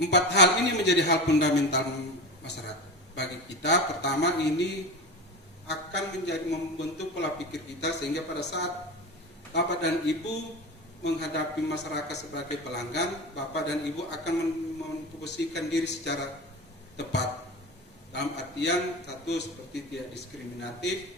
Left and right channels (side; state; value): both; normal; correlation 0.26